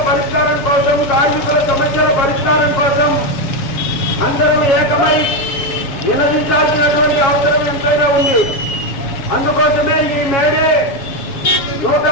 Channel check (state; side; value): late; right; 7.2 ms